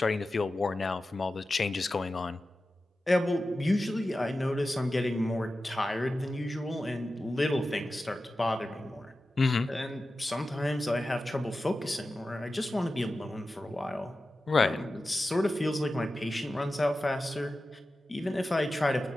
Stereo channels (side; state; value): both; normal; correlation 0.94